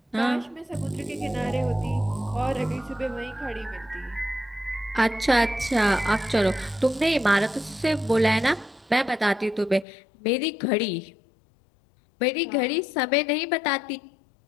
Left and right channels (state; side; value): drops out; right; at 9.9 s